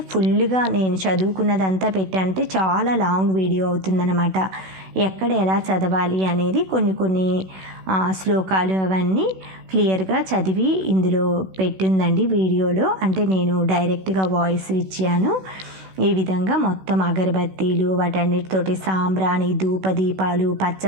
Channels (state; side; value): late; left; 16 ms